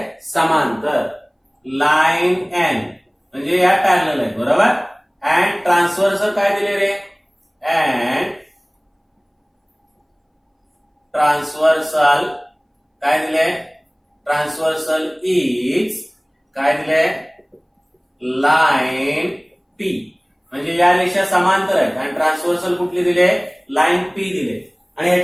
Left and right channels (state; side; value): identical; both; correlation 1.00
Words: समांतर. लाईन एन म्हणजे या पॅरलल आहे, बरोबर. अँड ट्रान्सव्हर्सल काय दिले रे, अँड ट्रान्सव्हर्सल काय दिले, ट्रान्सव्हर्सल इज काय दिले, लाईन पी. म्हणजे या रेषा समांतर आहेत आणि ट्रान्सव्हर्सल कुठली दिले, लाईन पी दिले. आणि